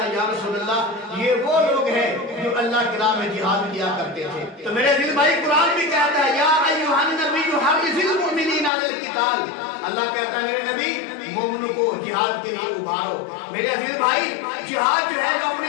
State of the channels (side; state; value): right; drops out; at 8.7 s